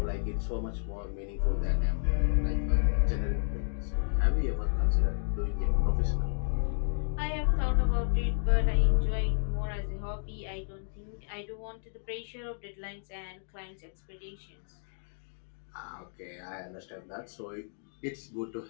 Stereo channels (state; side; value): silent; right; digital silence